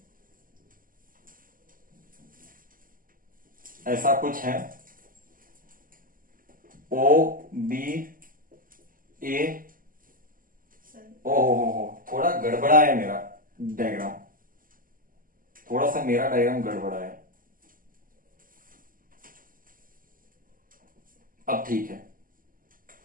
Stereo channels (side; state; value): left; late; 0.41 ms